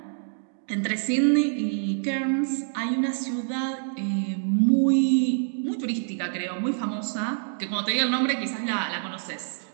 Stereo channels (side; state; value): left; silent; digital silence